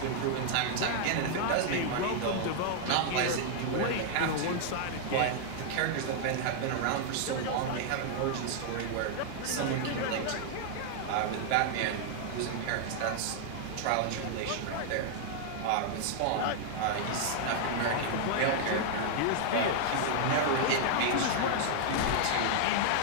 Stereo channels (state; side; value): different; both; correlation 0.00